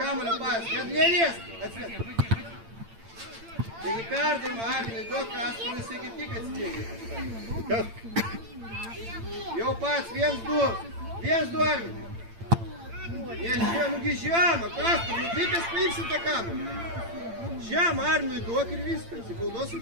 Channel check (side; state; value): left; late; 8.8 ms